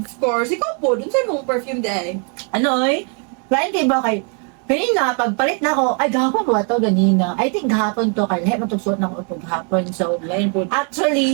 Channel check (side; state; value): left; quieter; 39.5 dB